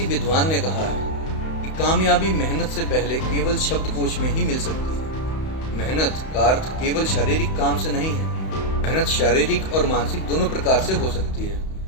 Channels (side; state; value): right; late; 31 ms